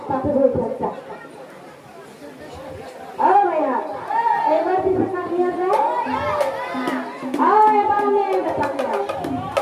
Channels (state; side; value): identical; both; correlation 1.00